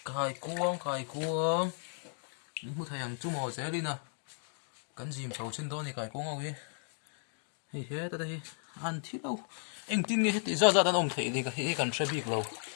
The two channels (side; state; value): right; silent; 55 dB below the other